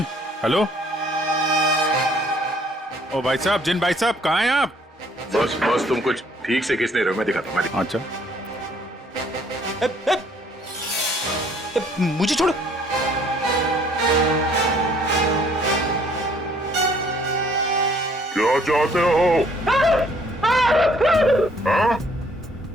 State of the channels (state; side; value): normal; both; correlation 0.61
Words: हेलो। ओ भाई साहब, जिन भाई साहब कहाँ हैं आप? बॉस तुम कुछ ठीक से खींच नहीं रहे हो, मैं दिखाता हूँ। अच्छा मुझे छोड़ो। क्या चाहते हो? हाँ?